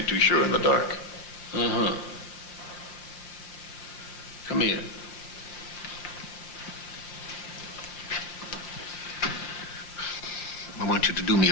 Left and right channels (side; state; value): right; late; 5.6 ms